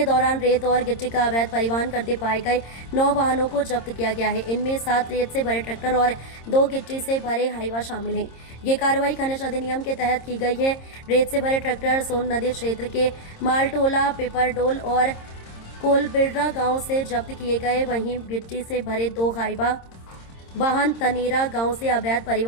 दौरान रेत और गिट्टी का अवैध परिवहन करते पाए गए 9 वाहनों को जब्त किया गया है। इनमें 7 रेत से भरे ट्रैक्टर और 2 गिट्टी से भरे हाईवा शामिल हैं। ये कार्रवाई खनिज अधिनियम के तहत की गई है। रेत से भरे ट्रैक्टर सोन नदी क्षेत्र के मालटोला, पिपरडोल और कोलबिर्रा गांव से जब्त किए गए। वहीं गिट्टी से भरे 2 हाईवा वाहन तनेरा गांव से अवैध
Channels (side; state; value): right; late; 26 ms